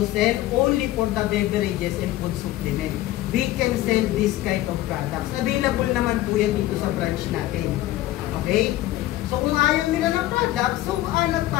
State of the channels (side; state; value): right; quieter; 15.4 dB